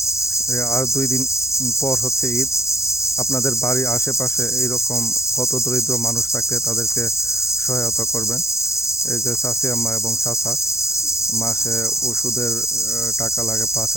আর 2 দিন পর হচ্ছে ঈদ। আপনাদের বাড়ির আশেপাশে এইরকম কত দরিদ্র মানুষ থাকলে তাদেরকে সহায়তা করবেন। এই যে চাচি আম্মা এবং চাচা, মাসে ওষুধের টাকা লাগে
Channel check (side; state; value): right; late; 0.14 ms